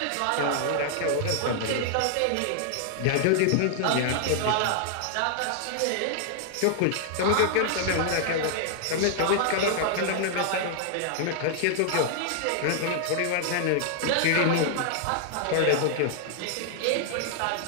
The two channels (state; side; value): different; both; correlation -0.01